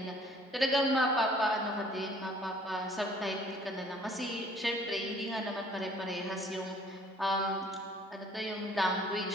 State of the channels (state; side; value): normal; both; correlation 0.57